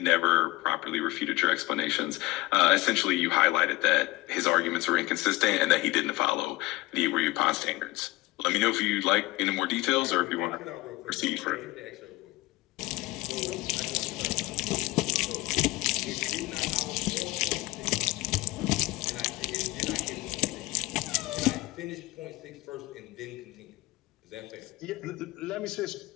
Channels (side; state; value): right; quieter; 20.3 dB